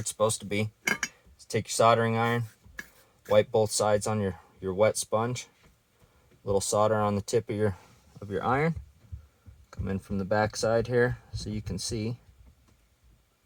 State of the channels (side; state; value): both; identical; correlation 1.00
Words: supposed to be. Just take your soldering iron, wipe both sides on your wet sponge. Little solder on the tip of your iron. Come in from the back side here so you can see.